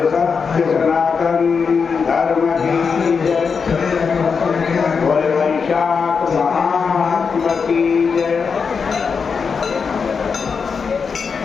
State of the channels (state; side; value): quieter; right; 5.6 dB